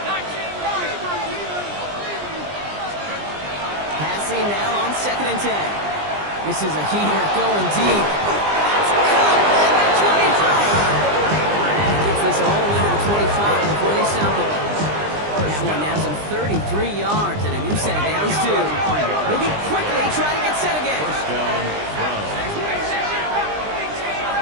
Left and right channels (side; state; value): left; late; 20 ms